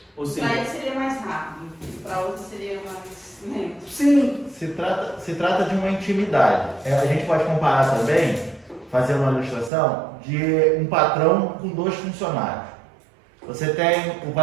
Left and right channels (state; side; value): drops out; left; at 9.7 s